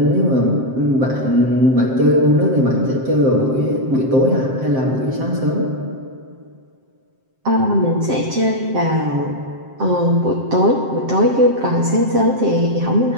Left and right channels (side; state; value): left; late; 7.6 ms